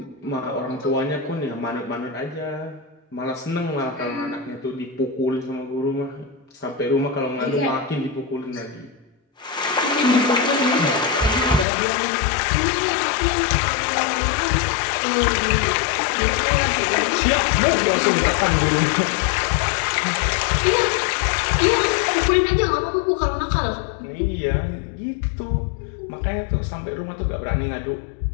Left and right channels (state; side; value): drops out; right; at 11.7 s